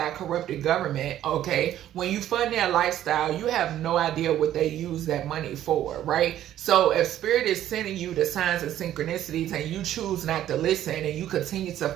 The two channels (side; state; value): left; quieter; 12.1 dB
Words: corrupted government, okay? When you fund their lifestyle, you have no idea what they use that money for, right? So if Spirit is sending you the signs and synchronicities and you choose not to listen and you continue to